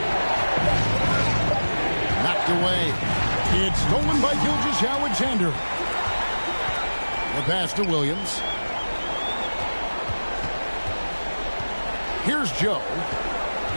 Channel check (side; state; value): both; inverted; correlation -1.00